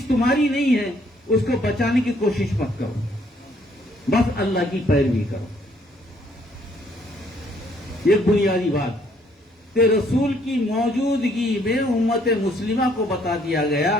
تمہاری نہیں ہے اس کو بچانے کی کوشش مت کرو، بس اللہ کی پیروی کرو۔ یہ بنیادی بات کہ رسول کی موجودگی میں امت مسلمہ کو بتا دیا گیا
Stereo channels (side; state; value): both; normal; correlation 0.66